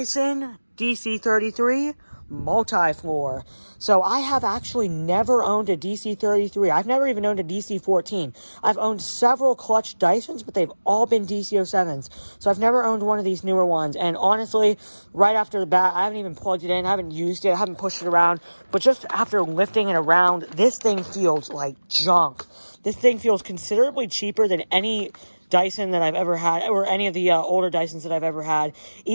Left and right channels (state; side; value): inverted; both; correlation -1.00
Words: DC33 MultiFloor. So I have actually never owned a DC33. I've never even owned a DC14. I've owned several clutch Dysons, but they've all been DC07s. So I've never owned one of these newer ones. And honestly, right after the bat, I haven't even plugged it in, I haven't used it, I haven't pushed it around. But just after lifting it around, this thing feels like junk. This thing feels considerably cheaper than any Dyson that I've ever had, or any of the older Dysons that I've ever had.